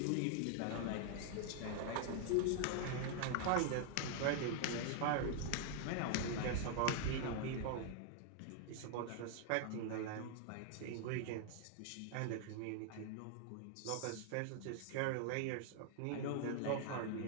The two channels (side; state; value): both; different; correlation 0.00